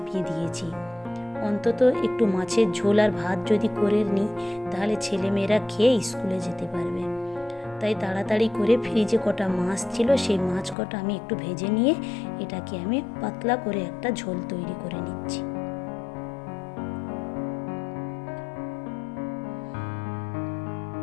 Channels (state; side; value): drops out; right; at 10.8 s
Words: দিয়েছি। অন্তত একটু মাছের ঝোল আর ভাত যদি করে নিই তাহলে ছেলেমেয়েরা খেয়ে স্কুলে যেতে পারবে। তাই তাড়াতাড়ি করে ফ্রিজে কটা মাছ ছিল, সেই মাছ কটা আমি একটু ভেজে নিয়ে এটাকে আমি পাতলা করে একটা ঝোল তৈরি করে নিচ্ছি।